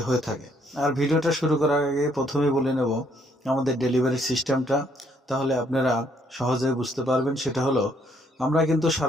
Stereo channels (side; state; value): both; normal; correlation 0.68